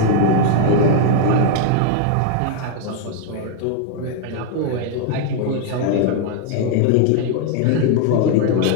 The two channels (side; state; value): both; different; correlation 0.00